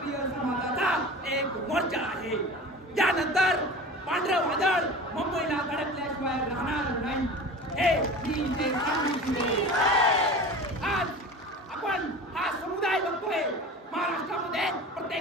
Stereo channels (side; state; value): both; normal; correlation 0.35